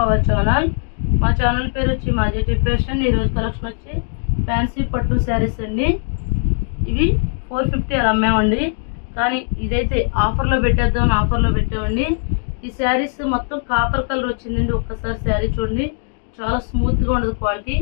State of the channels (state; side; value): silent; right; 56 dB below the other